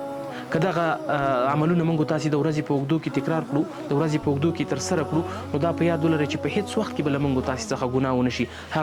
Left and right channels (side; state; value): both; identical; correlation 1.00